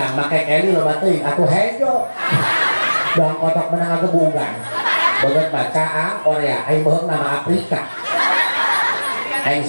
make Kelly loba teuing atuh hejo. Dong kotok menang agebugan. Beungeut bacaan Korea, aing beuheung nama Afrika. Aing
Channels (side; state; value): both; inverted; correlation -1.00